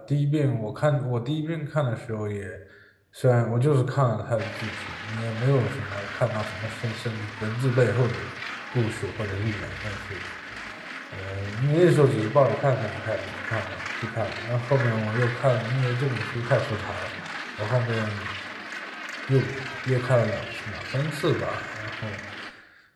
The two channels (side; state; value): both; identical; correlation 1.00